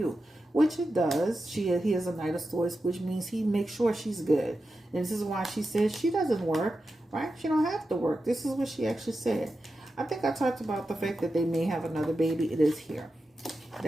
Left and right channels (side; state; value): both; normal; correlation 0.90